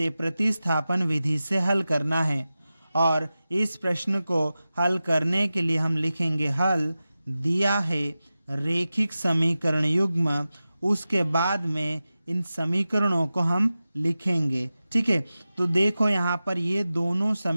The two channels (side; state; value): both; inverted; correlation -0.94